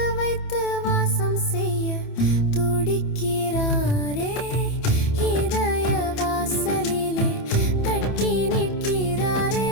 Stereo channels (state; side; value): late; right; 27 ms